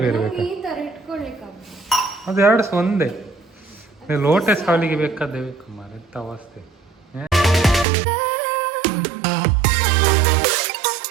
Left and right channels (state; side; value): drops out; left; at 7.9 s